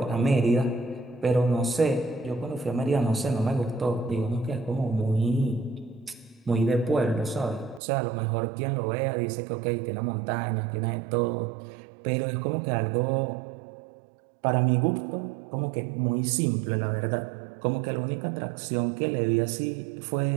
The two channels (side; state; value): left; drops out; at 7.8 s